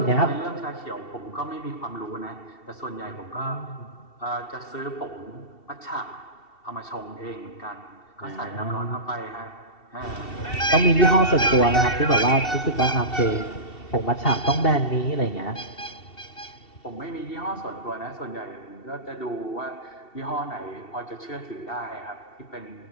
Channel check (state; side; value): late; right; 2.7 ms